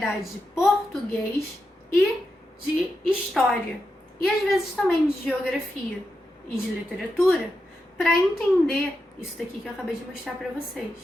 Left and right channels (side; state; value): both; normal; correlation 0.87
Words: de português e de história, e às vezes também de geografia e de literatura, para entender isso daqui que eu acabei de mostrar para vocês,